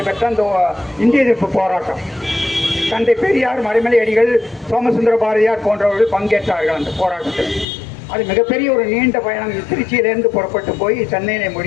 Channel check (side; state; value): right; drops out; at 7.7 s